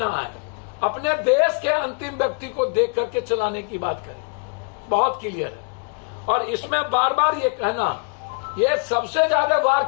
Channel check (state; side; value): quieter; right; 38.1 dB